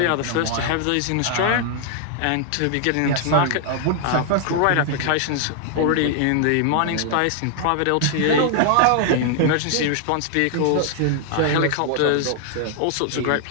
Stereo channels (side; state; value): both; different; correlation 0.00